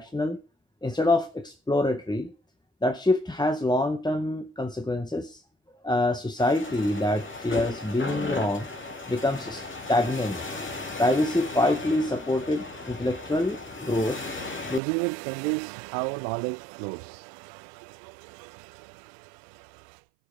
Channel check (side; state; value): left; drops out; at 14.8 s